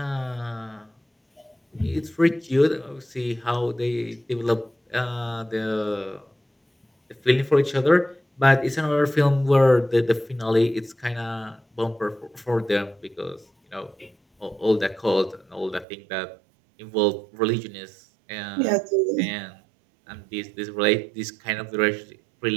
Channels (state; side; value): drops out; left; at 15.9 s